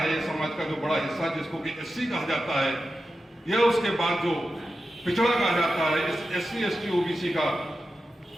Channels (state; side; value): normal; both; correlation 0.91